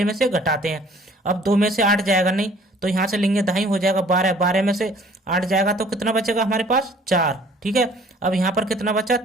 में से घटाते हैं। अब 2 में से 8 जाएगा नहीं, तो यहाँ से लेंगे दाई, हो जाएगा 12। 12 में से 8 जाएगा तो कितना बचेगा हमारे पास, 4, ठीक है। अब यहाँ पर कितना बचा,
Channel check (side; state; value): both; normal; correlation 0.54